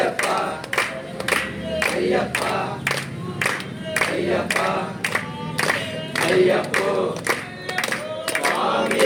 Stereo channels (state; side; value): identical; both; correlation 1.00